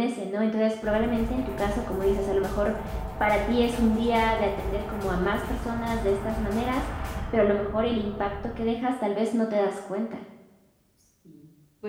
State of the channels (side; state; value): both; identical; correlation 1.00